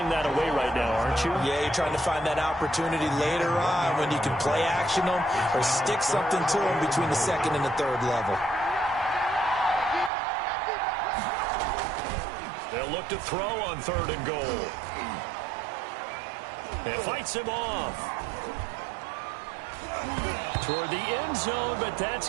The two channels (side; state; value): left; drops out; at 10.1 s